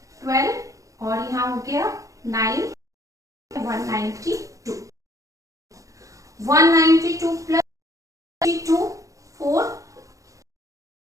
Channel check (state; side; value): late; left; 0.16 ms